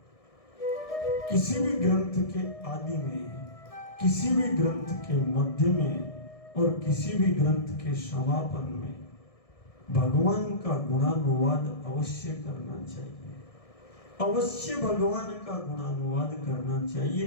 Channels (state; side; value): late; right; 1.6 ms